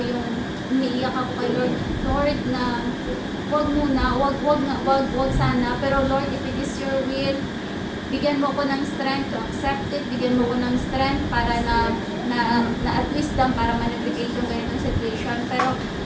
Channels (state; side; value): identical; both; correlation 1.00